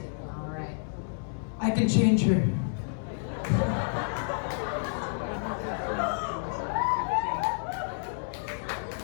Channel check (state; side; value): silent; right; digital silence